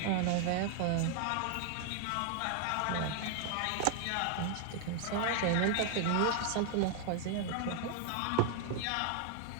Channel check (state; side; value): different; both; correlation 0.00